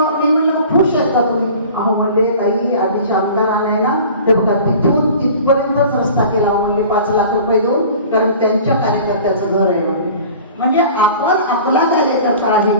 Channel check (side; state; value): both; inverted; correlation -0.43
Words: म्हणलं खुश आहेत का तुम्ही? अहो म्हणले ताई आधीच्या आमदाराने ना ते बघा तिथून तिथपर्यंतच रस्ता केला म्हणले 5 लाख रुपये देऊन, कारण त्यांच्या कार्यकर्त्याचं घर आहे म्हणजे आपण आपला कार्यकर्ता आहे